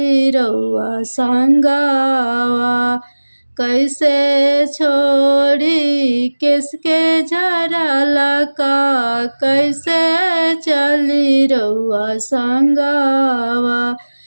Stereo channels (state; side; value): inverted; both; correlation -1.00